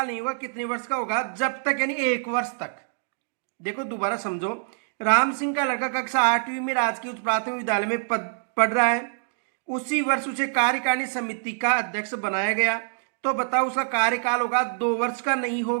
नहीं होगा, कितने वर्ष का होगा, जब तक यानी 1 वर्ष तक। देखो दोबारा समझो, राम सिंह का लड़का कक्षा 8वीं में राजकीय उच्च प्राथमिक विद्यालय में पढ़ रहा है। उसी वर्ष उसे कार्यकारिणी समिति का अध्यक्ष बनाया गया। तो बताओ उसका कार्यकाल होगा 2 वर्ष का नहीं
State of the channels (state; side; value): silent; left; 61 dB below the other